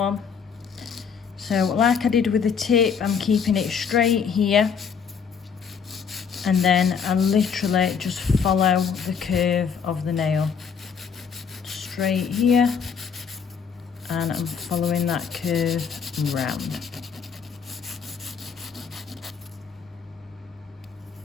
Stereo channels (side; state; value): right; quieter; 6.5 dB